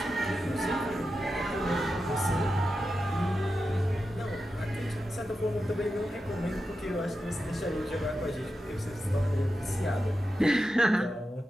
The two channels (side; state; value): both; normal; correlation 0.90